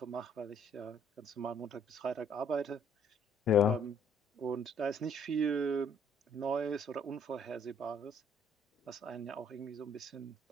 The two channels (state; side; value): normal; both; correlation 0.63